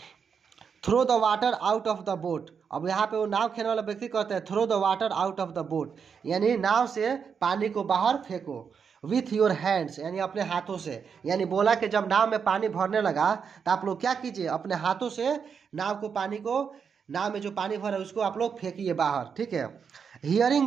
Throw the water out of the boat, अब यहाँ पे वो नाव खेलने वाला व्यक्ति कहते हैं throw the water out of the boat, यानी नाव से पानी को बाहर फेंको। विथ योर हैंड्स, यानी अपने हाथों से, यानी बोला कि जब नाव में पानी भरने लगा तो आप लोग क्या कीजिए, अपने हाथों से नाव को, पानी को, नाव में जो पानी भरा है उसको आप लोग फेंकिए बाहर, ठीक है।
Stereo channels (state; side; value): quieter; left; 6.5 dB